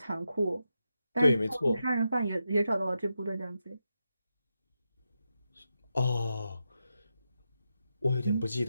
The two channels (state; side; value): inverted; both; correlation -0.87